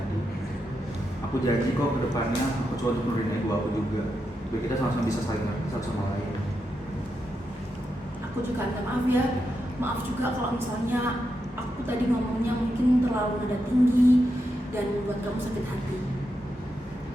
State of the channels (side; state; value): both; normal; correlation 0.85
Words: Aku janji kok kedepannya aku coba untuk nurunin ego aku juga, biar kita sama-sama bisa saling ngerti satu sama lain. aku juga minta maaf ya. Maaf juga kalau misalnya aku tadi ngomongnya mungkin terlalu nada tinggi dan membuat kamu sakit hati.